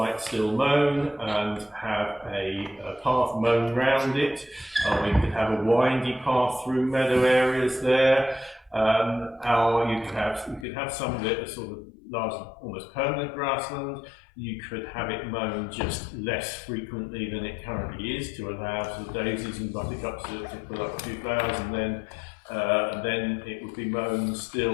still mown and have a path mown round it. We could have a windy path through meadow areas there. Or you could have some of it as sort of large, almost permanent grassland. You could have it mown just less frequently than it currently is to allow sort of daisies and buttercups to pull up a few flowers, and then it would be mown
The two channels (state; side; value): drops out; right; at 10.7 s